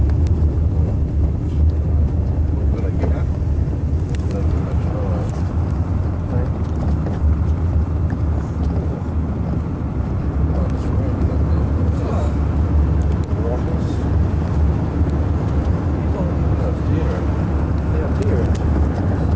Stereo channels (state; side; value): identical; both; correlation 1.00